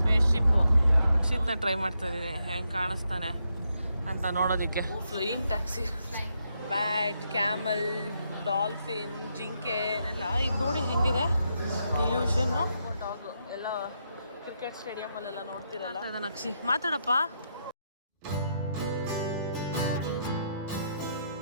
ಶಿಪ್ಪು ಅಕ್ಷಿತ್ನ ಟ್ರೈ ಮಾಡ್ತಾ ಇದ್ದೀನಿ, ಹೆಂಗೆ ಕಾಣಿಸ್ತಾನೆ ಅಂತ ನೋಡೋದಕ್ಕೆ. Flying taxi, bat, camel, dolphin, ಜಿಂಕೆ ಎಲ್ಲ ಇದು ನೋಡಿ ಹೆಂಗಿದೆ ಇಲ್ಯೂಷನ್ನು. ಡಾಗು ಎಲ್ಲ ಕ್ರಿಕೆಟ್ ಸ್ಟೇಡಿಯಮಲ್ಲೆಲ್ಲ ನೋಡ್ತಿರಲ್ಲ. ಅಕ್ಷಿ ಮಾತಾಡಪ್ಪ.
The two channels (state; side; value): inverted; both; correlation -0.80